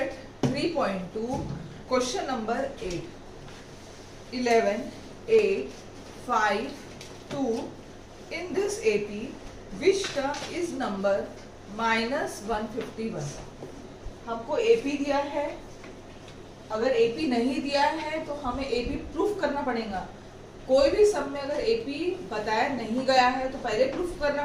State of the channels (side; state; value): both; identical; correlation 1.00